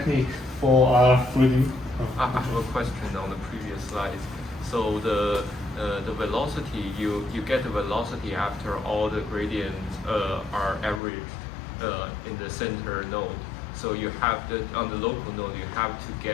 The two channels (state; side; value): drops out; right; at 11.0 s